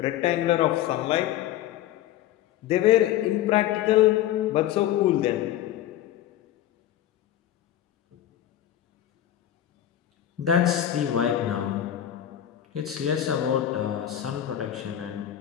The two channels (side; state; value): right; quieter; 11.9 dB